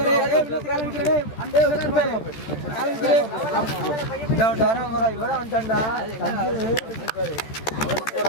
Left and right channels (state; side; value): late; right; 13 ms